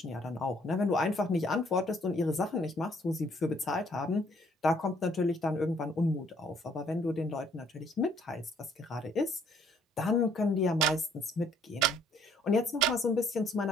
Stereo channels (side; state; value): both; normal; correlation 0.64